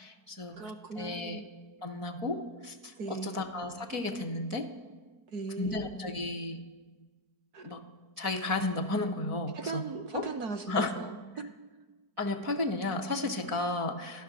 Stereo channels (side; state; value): left; late; 4.1 ms